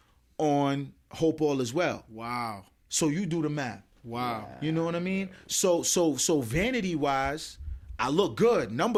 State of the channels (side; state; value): both; identical; correlation 1.00